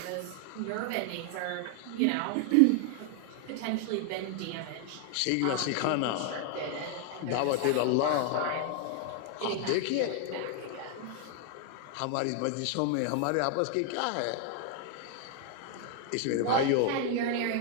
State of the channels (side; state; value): both; different; correlation 0.00